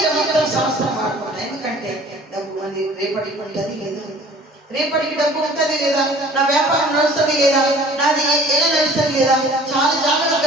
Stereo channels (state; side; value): normal; both; correlation 0.49